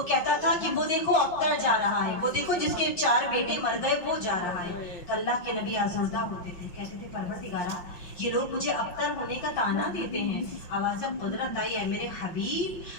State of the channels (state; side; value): late; right; 5.6 ms